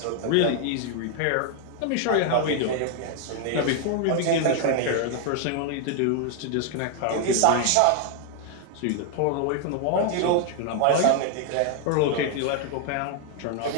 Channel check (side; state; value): both; different; correlation 0.00